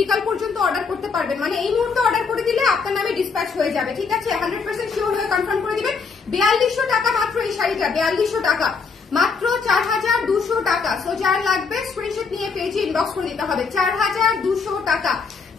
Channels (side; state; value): right; quieter; 5.1 dB